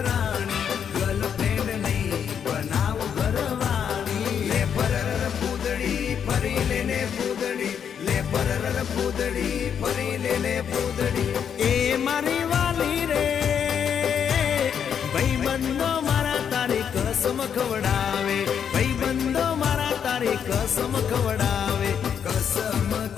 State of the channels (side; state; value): right; quieter; 7.9 dB